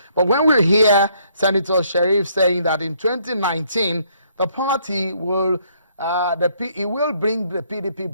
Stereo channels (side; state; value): both; inverted; correlation -0.67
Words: But when we hear Senator Sharif saying that in 2019, the party will, he will bring the PDP